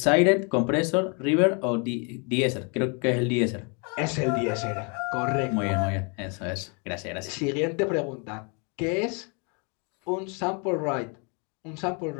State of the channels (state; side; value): quieter; right; 35.1 dB